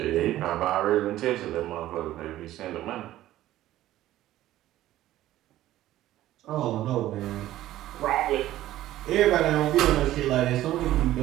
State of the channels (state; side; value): quieter; left; 14.3 dB